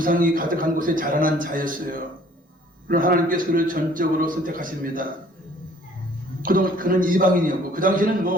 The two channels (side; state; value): both; normal; correlation 0.56